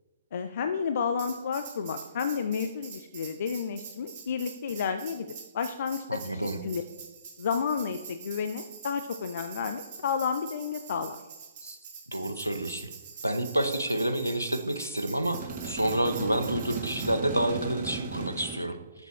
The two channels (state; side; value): inverted; both; correlation -0.71